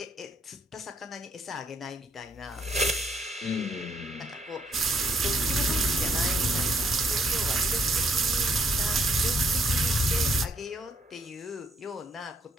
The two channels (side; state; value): both; normal; correlation 0.70